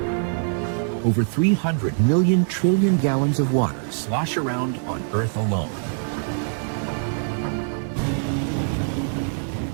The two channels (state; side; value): silent; left; digital silence